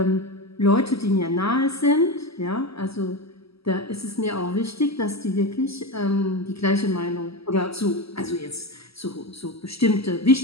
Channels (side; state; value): right; late; 0.76 ms